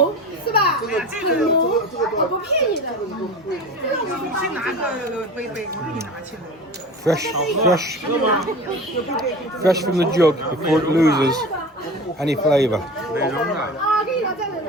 是吧？这个浓，我不骗你的。你去拿个杯，我给你拿去了。Fresh from the jug before it loses any flavour. 美容的，啊，给你拿这个。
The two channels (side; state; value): both; normal; correlation 0.34